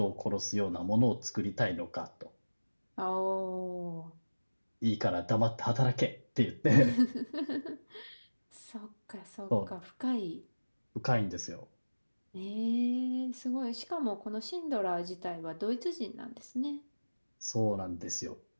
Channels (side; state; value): both; inverted; correlation -1.00